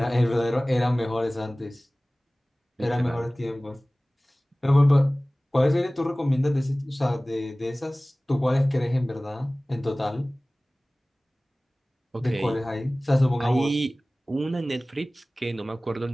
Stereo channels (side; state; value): both; normal; correlation 0.98